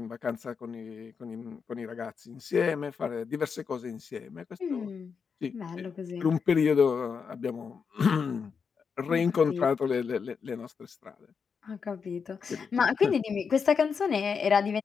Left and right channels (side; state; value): right; quieter; 5.9 dB